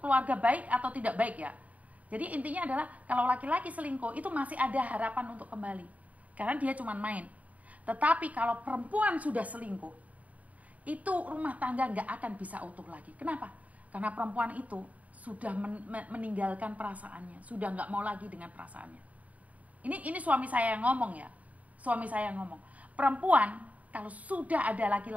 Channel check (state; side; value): late; left; 0.070 ms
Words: baik atau tidak baik ya. Jadi intinya adalah kalau laki-laki selingkuh itu masih ada harapan untuk kembali. Karena dia cuma main. Tetapi kalau perempuan sudah selingkuh, itu rumah tangga nggak akan bisa utuh lagi. Kenapa? Karena perempuan itu sudah meninggalkan perasaannya, sudah nggak mau lagi dengan perasaannya. Ini suami saya yang ngomong ya, suami saya yang ngomong. Perempuan kalau sudah ada